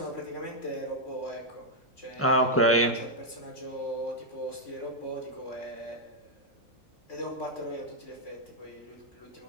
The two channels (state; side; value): normal; both; correlation -0.03